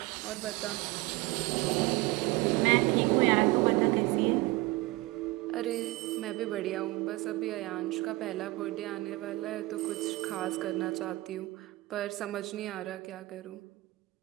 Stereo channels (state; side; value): quieter; left; 21.1 dB